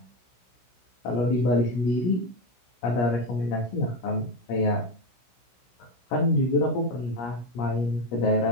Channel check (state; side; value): late; right; 16 ms